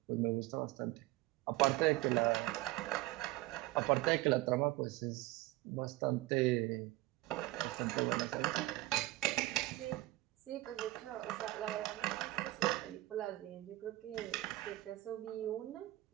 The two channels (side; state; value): left; quieter; 18.2 dB